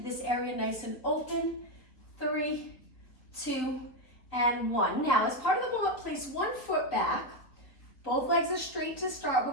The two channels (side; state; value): right; late; 3.8 ms